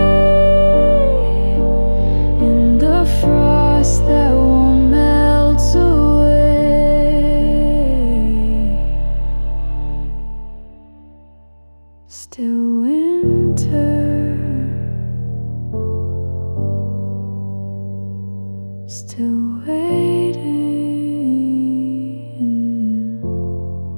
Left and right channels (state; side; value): inverted; both; correlation -1.00